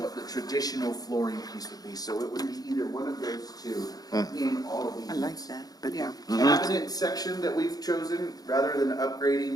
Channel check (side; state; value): right; late; 0.18 ms